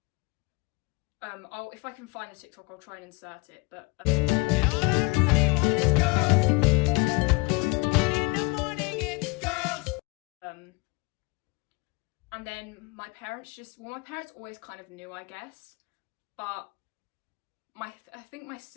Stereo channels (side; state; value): right; quieter; 27.3 dB